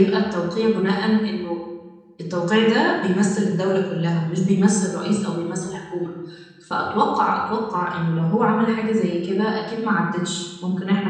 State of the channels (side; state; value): both; identical; correlation 1.00